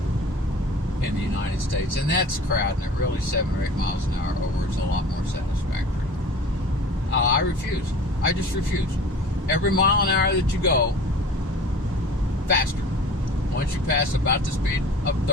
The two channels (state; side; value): normal; both; correlation 0.42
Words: in the United States, and that's crowding it. Really, 7 or 8 miles an hour over is a lot more satisfactory. I refuse. I just refuse. Every mile an hour that you go, faster. Once you pass about the speed of